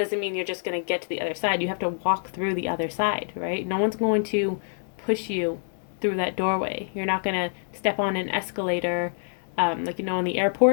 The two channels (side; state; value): right; silent; digital silence